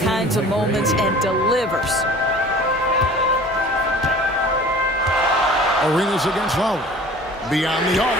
of moments and delivers. Arenas against Lowry. Beyond the arc.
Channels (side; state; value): both; normal; correlation 0.45